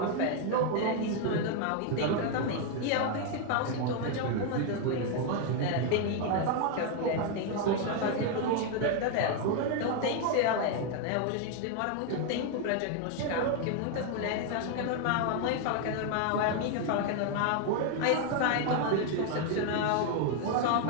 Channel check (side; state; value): both; different; correlation 0.01